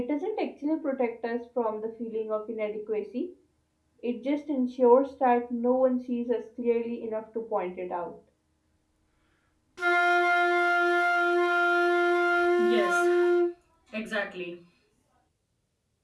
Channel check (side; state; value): both; identical; correlation 1.00